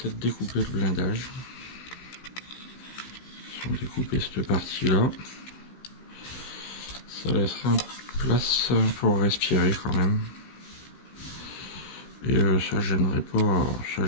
découper le blindage. Si on découper cette partie-là, ça laissera place pour respirer quand même. Et ça gênerait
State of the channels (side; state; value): right; late; 16 ms